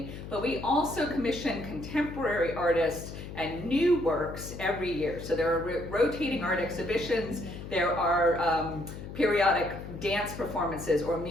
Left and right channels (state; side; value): noise; left; hum, 11 dB below the sound